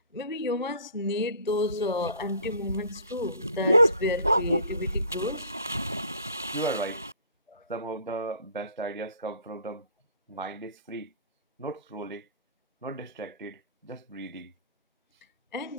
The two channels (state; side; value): inverted; both; correlation -0.49